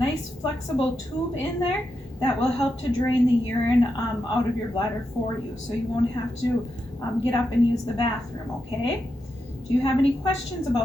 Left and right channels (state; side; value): normal; both; correlation 0.86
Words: flexible tube in there that will help to drain the urine out of your bladder for you, so you won't have to get up and use the bathroom, okay? Do you have any questions